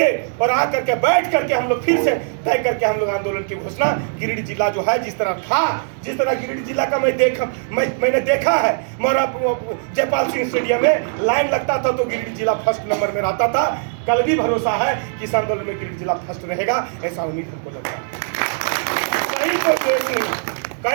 और आ करके बैठ करके हम लोग फिर से तय करके हम लोग आंदोलन की घोषणा। गिरिडीह जिला जो है जिस तरह था, जिस तरह गिरिडीह जिला का मैंने देखा है, मोरा जयपाल सिंह स्टेडियम में लाइन लगता था तो गिरिडीह जिला फर्स्ट नंबर में रहता था। कल भी भरोसा है कि इस आंदोलन में गिरिडीह जिला फर्स्ट रहेगा, ऐसा उम्मीद हमको लगता है। कहीं कोई द्वेष नहीं,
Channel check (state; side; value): silent; left; digital silence